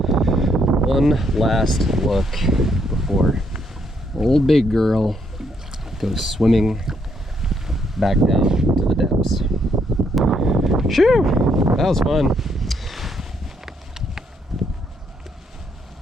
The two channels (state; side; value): normal; both; correlation 0.73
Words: One last look before old big girl goes swimming back down to the depths. Shoo! That was fun.